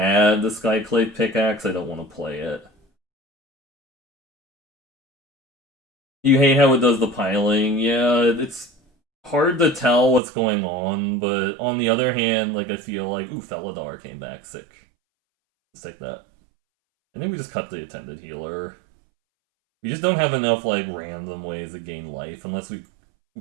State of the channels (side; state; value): left; drops out; at 10.2 s